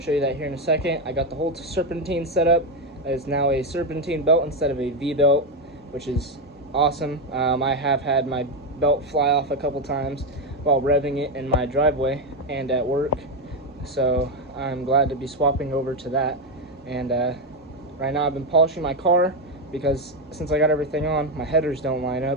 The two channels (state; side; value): normal; both; correlation 0.07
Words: you that here in a second. I got the whole serpentine set up. It's now a serpentine belt instead of a V-belt, which is awesome. I have had my belt fly off a couple times while revving it in my driveway and at work. So I'm glad to be swapping over to that. And right now I've been polishing my car because since I got everything on, my headers don't line